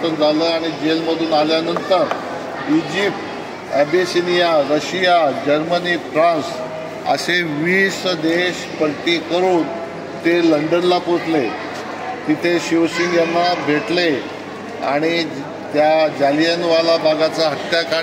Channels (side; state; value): both; identical; correlation 1.00